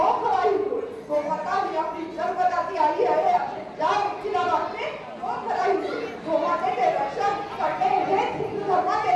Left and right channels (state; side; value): identical; both; correlation 1.00